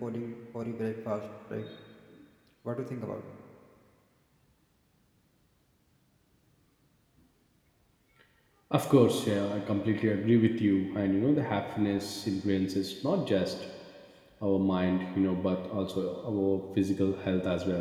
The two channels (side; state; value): both; identical; correlation 1.00